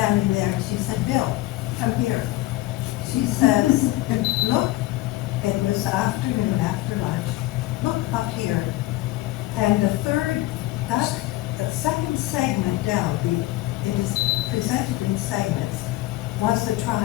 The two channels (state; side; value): quieter; right; 17.4 dB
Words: there and she said, Bill, come here. She says, look, it was afternoon after lunch, look up here. And the second segment down, it is presented in segments, was the